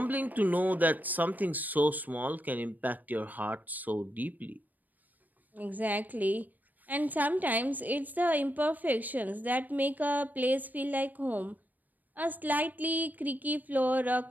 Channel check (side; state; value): left; late; 0.084 ms